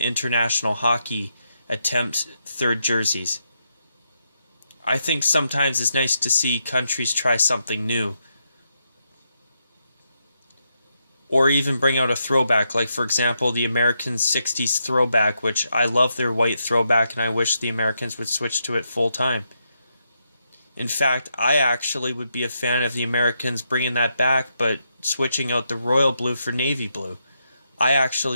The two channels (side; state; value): both; inverted; correlation -0.82